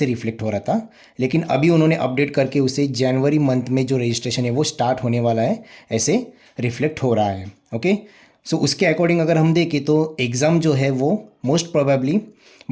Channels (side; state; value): both; identical; correlation 1.00